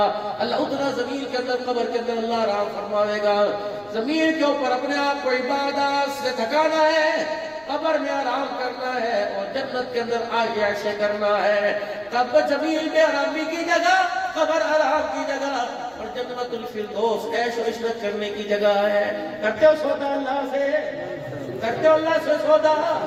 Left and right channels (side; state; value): right; noise; rumble, 30 dB below the sound